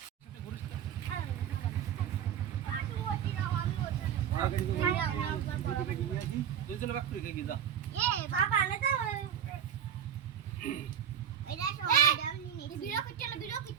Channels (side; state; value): left; quieter; 9.1 dB